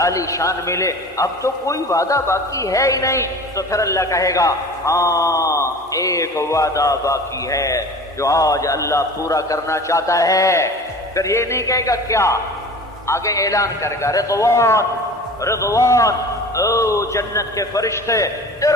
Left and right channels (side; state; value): both; normal; correlation 0.39